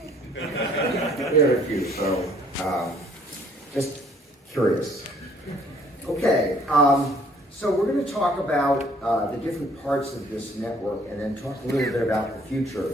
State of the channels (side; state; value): both; normal; correlation 0.59